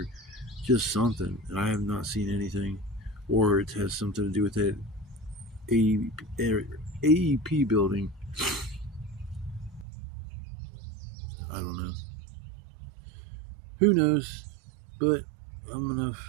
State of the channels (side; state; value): left; drops out; at 9.9 s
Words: just something, and I have not seen anything. Or it has something to do with that AEP building. I don't know. Who knows? But I'm gonna